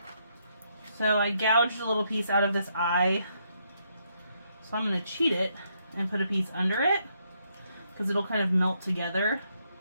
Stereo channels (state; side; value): inverted; both; correlation -0.76